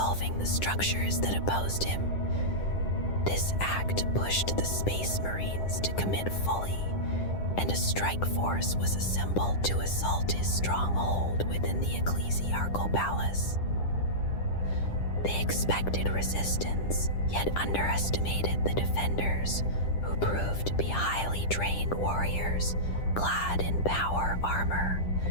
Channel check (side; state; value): right; late; 10 ms